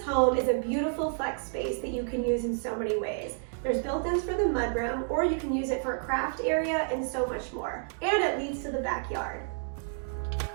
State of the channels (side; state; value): left; silent; 58 dB below the other